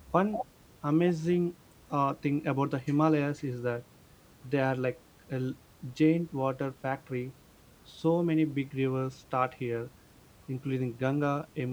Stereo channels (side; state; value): both; identical; correlation 1.00